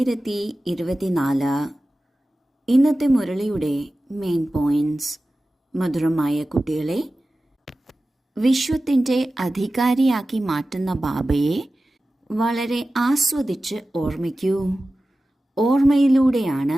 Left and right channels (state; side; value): normal; both; correlation 0.95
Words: ഇന്നത്തെ മുരളിയുടെ main points. മധുരമായ കുട്ടികളെ, വിശ്വത്തിൻ്റെ അധികാരിയാക്കി മാറ്റുന്ന ബാബയെ വളരെ ആസ്വദിച്ച് ഓർമ്മിക്കൂ. ഓർമ്മയിലൂടെയാണ്